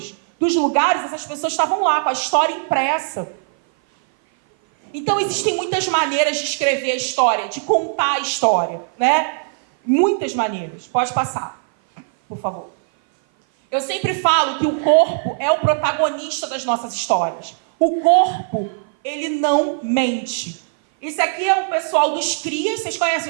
dos lugares, essas pessoas estavam lá com a história impressa. Então existem muitas maneiras de escrever a história, de contar a história, né? Muitas maneiras. Pode passar, por favor. Eu sempre falo que o corpo é o protagonista das nossas histórias. O corpo, ele não mente. Isso aqui é o pessoal dos crias. Vocês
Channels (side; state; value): left; silent; 57 dB below the other